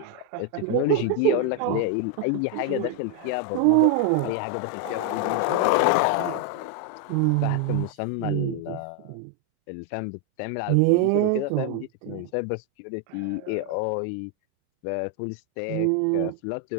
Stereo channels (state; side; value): different; both; correlation 0.01